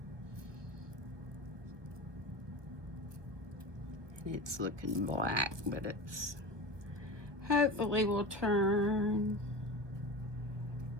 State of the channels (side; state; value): left; late; 1.3 ms